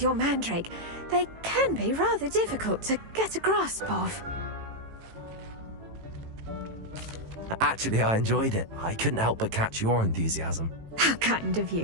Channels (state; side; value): late; left; 18 ms